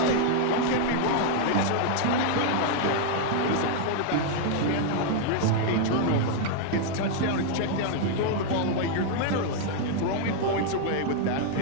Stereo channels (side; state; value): both; different; correlation 0.00